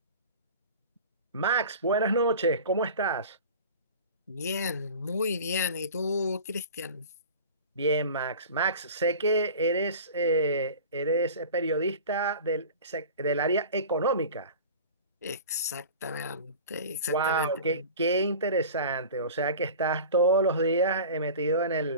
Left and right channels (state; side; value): inverted; both; correlation -0.37